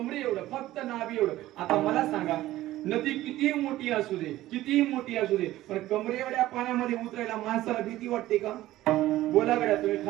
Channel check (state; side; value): quieter; left; 15.5 dB